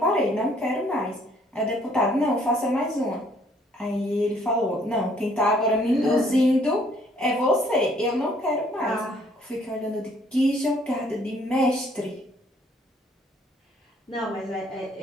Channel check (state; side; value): normal; both; correlation 0.63